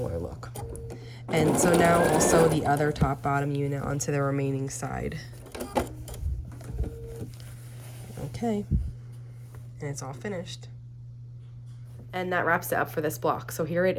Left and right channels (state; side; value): identical; both; correlation 1.00